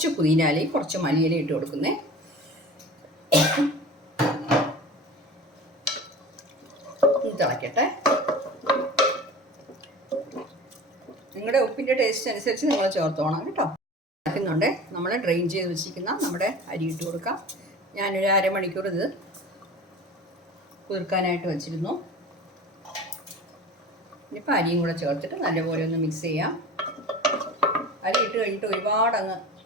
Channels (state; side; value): normal; both; correlation 0.37